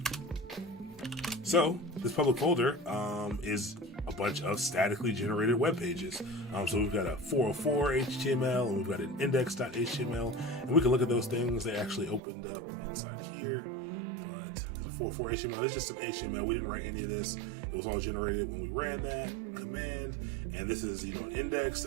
So this public folder is a bunch of statically generated web pages. So we've got a 404 HTML, and we've got an index.html, and we can look at those things. They actually opened up inside here. There's a 404 HTML. It's just some HTML. We didn't write any of this. It was all generated when we ran that command. And this is, an index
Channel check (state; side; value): drops out; left; at 12.2 s